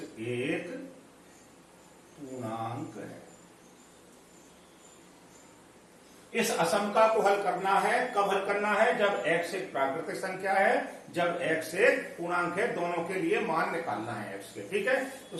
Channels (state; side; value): identical; both; correlation 1.00